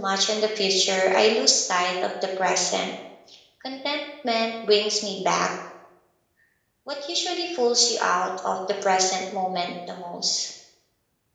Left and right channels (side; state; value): both; identical; correlation 1.00